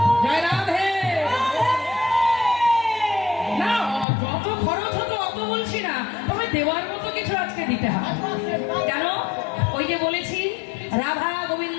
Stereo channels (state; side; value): drops out; right; at 4.0 s